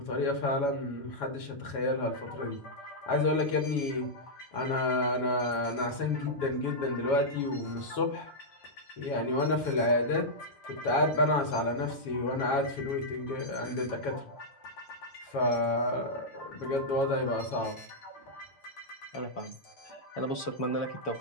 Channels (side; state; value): right; late; 7.1 ms